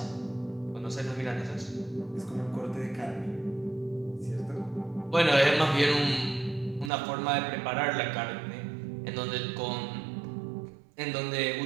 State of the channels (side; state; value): left; drops out; at 6.9 s